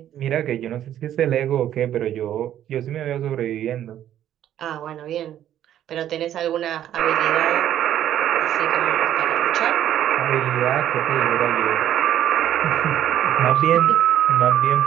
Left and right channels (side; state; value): left; quieter; 11.3 dB